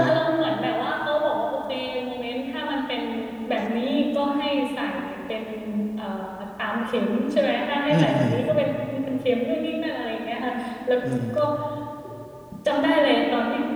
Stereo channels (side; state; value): both; identical; correlation 1.00